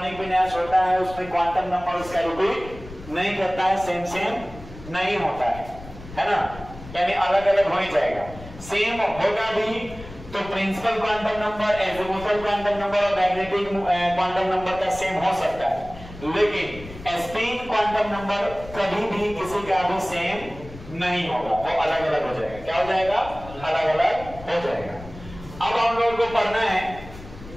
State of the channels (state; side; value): noise; left; rumble, 16 dB below the sound